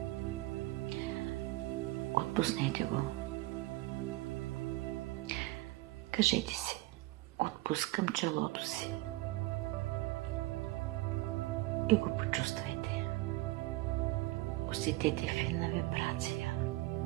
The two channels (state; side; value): quieter; left; 19.9 dB